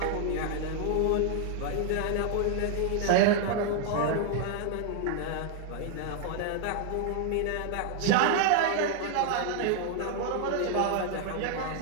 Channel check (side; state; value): both; different; correlation 0.00